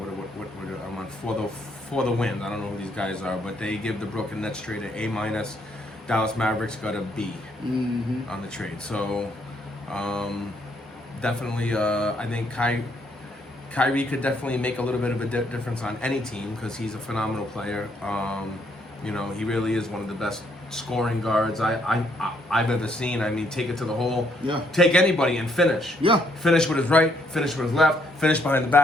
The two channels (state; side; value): normal; both; correlation 0.71